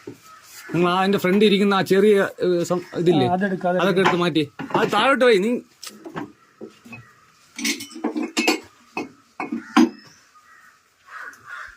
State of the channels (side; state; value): both; identical; correlation 1.00